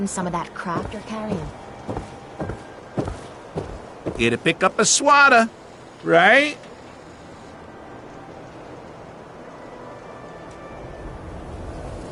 some of that crap you're carrying. Here to pick up a swatter, right?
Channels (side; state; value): both; identical; correlation 1.00